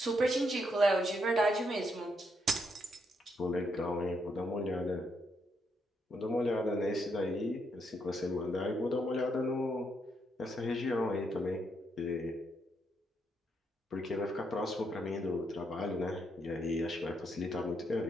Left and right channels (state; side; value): normal; both; correlation 0.77